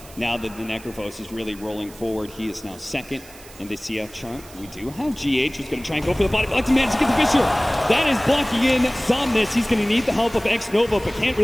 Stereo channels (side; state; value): right; noise; hiss, 20 dB below the sound